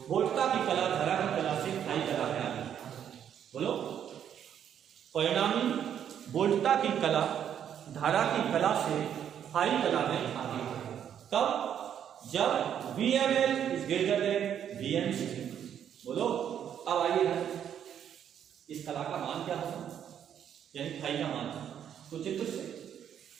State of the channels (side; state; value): left; quieter; 9.2 dB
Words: वोल्टता की कला धारा की कला से फाई कला में आ गई। बोलो, परिणामी वोल्टता की कला धारा की कला से फाई कला में आ गई। तब जब VML is greater than VMC। बोलो, अब आइए इस कला का मान क्या होगा? यानी फाई का मान। तो चित्र